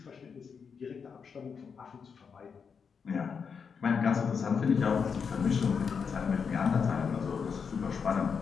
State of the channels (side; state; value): right; quieter; 6.1 dB